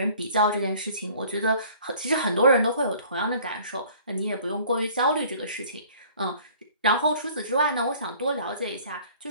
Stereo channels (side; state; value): both; inverted; correlation -0.52